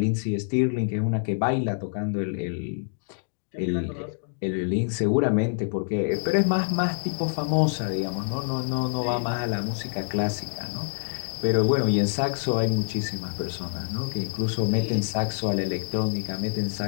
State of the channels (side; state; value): right; silent; digital silence